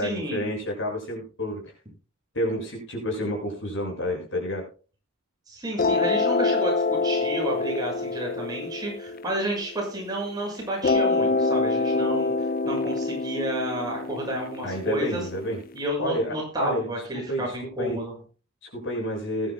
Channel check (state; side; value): normal; both; correlation 0.08